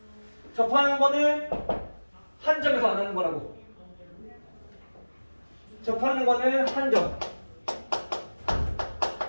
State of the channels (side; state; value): both; inverted; correlation -1.00